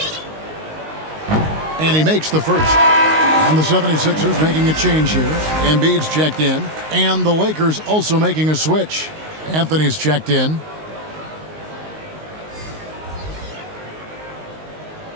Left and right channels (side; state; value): left; late; 19 ms